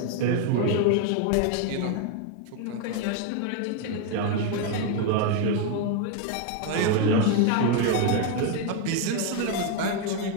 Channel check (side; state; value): both; different; correlation 0.01